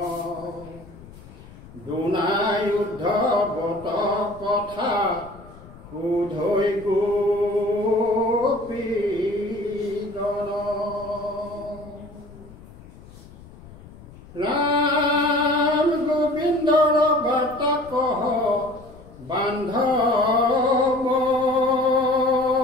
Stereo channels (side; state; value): left; noise; rumble, 20 dB below the sound